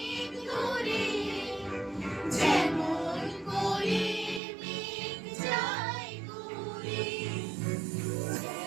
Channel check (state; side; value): drops out; left; at 4.4 s